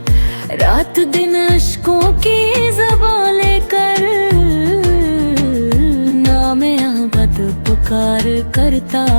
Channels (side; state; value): both; inverted; correlation -1.00